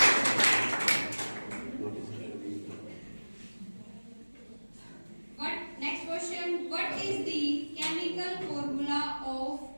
Next question. What is the chemical formula of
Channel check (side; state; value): both; inverted; correlation -1.00